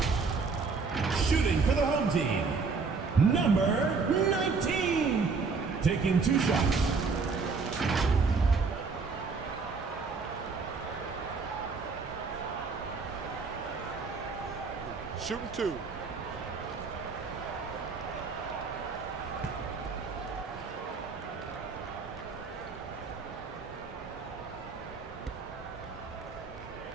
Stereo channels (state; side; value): quieter; left; 4.7 dB